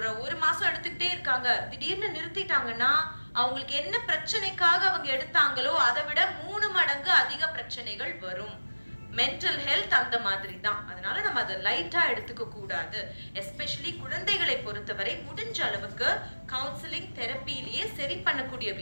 ஒரு மாசம் எடுத்துக்கிட்டே இருக்காங்க, திடீர்னு நிறுத்திட்டாங்கன்னா அவங்களுக்கு என்ன பிரச்சனைக்காக அவங்க எடுத்தாங்களோ அதை விட 3 மடங்கு அதிக பிரச்சனைகள் வரும். மென்டல் ஹெல்த் அந்த மாதிரி தான். அதனால நம்ம அதை லைட்டா எடுத்துக்க கூடாது. எஸ்பெஷலி குழந்தைகளை பொறுத்தவரை முடிஞ்ச அளவுக்கு கவுன்சிலிங் தெரப்பிலேயே சரி பண்ணக்கூடிய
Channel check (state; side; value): inverted; both; correlation -1.00